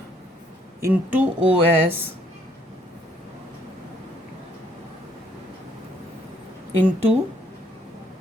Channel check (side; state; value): both; normal; correlation 0.67